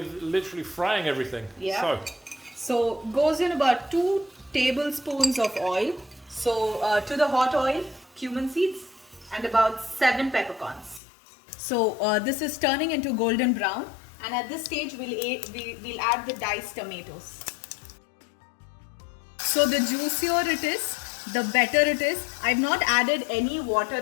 literally frying everything. Yeah. So goes in about 2 tablespoons of oil. So to the hot oil, cumin seeds, and about 7 peppercorns. So this is turning into golden brown, and at this stage we'll add the diced tomatoes. So the juicier it is, the better it is. I've not added any water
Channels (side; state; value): right; drops out; at 11.0 s